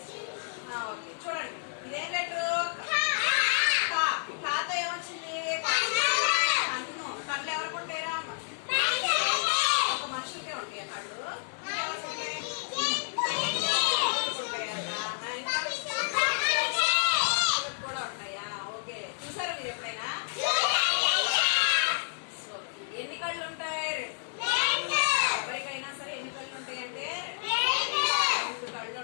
ఓకే, చూడండి. ఇదేం లెటరు? కాతో ఏమొచ్చింది? కన్ను. కళ్ళు ఎవరికి ఉంటాయిరా? ఒక మనుషులకే ఉంటాయి కళ్ళు. కూడా ఉంటాయా? ఓకే, చూసారా మీరు ఎప్పుడైనా? ఎన్ని కళ్ళు ఉంటాయి? ఎవరికైనా సరే ఎన్ని కళ్ళు ఉంటాయి అంటే 2 కళ్ళు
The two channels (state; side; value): silent; right; digital silence